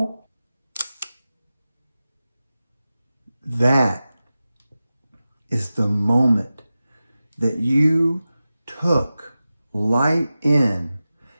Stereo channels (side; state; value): both; inverted; correlation -0.95